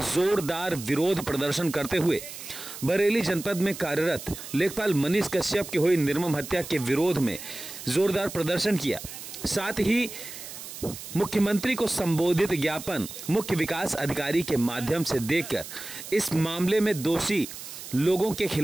जोरदार विरोध प्रदर्शन करते हुए बरेली जनपद में कार्यरत लेखपाल मनीष कश्यप की हुई निर्मम हत्या के विरोध में जोरदार प्रदर्शन किया। साथ ही मुख्यमंत्री को संबोधित ज्ञापन मुख्य विकास अधिकारी के माध्यम से देकर इस मामले में दोषी लोगों के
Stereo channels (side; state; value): right; noise; hiss, 12 dB below the sound